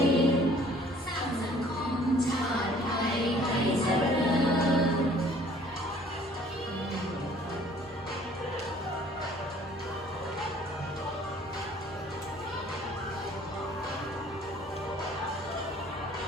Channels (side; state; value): both; normal; correlation 0.55